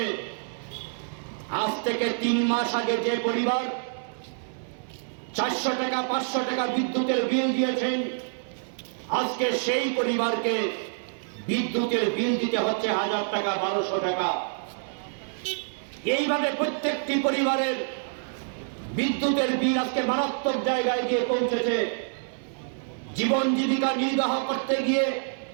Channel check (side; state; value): left; silent; 60 dB below the other